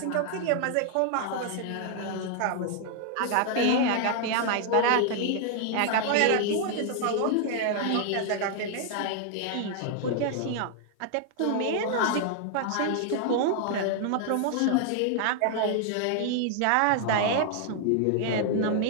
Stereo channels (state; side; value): different; both; correlation 0.00